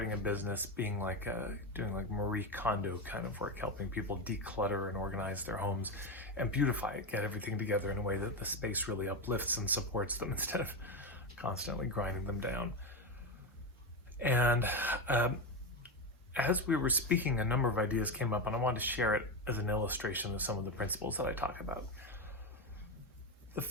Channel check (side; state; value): both; normal; correlation 0.13